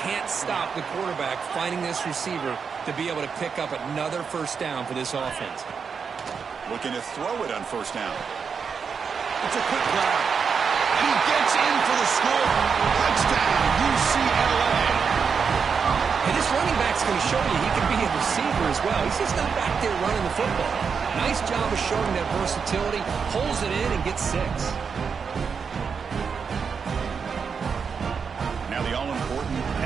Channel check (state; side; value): quieter; left; 6.0 dB